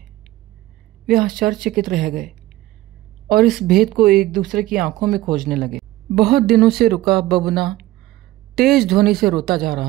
वे आश्चर्यचकित रह गए और इस भेद को एक दूसरे की आंखों में खोजने लगे। बहुत दिनों से रुका बबूना तेज ध्वनि से रोता जा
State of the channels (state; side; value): quieter; left; 16.4 dB